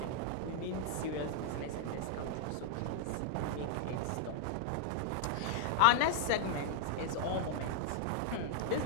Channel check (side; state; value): both; different; correlation -0.01